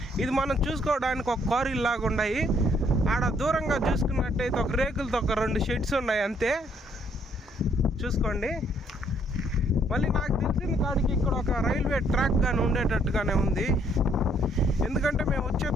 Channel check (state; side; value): normal; both; correlation 0.67